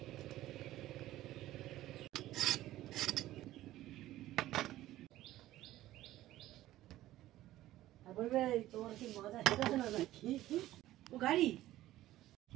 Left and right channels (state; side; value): quieter; left; 15.0 dB